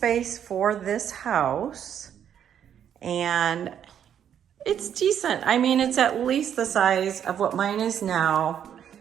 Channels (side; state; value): left; quieter; 9.2 dB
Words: for this house. And it's decent. I mean, it's at least the size of what mine is now.